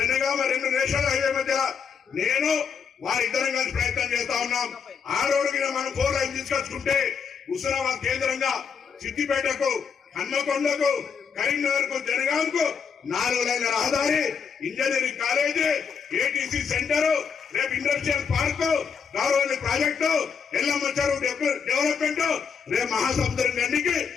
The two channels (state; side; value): quieter; right; 6.4 dB